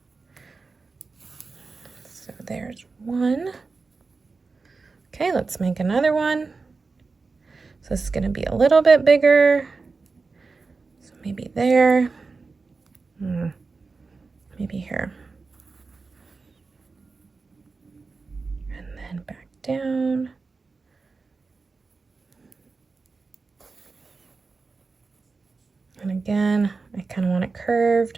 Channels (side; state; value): left; quieter; 4.2 dB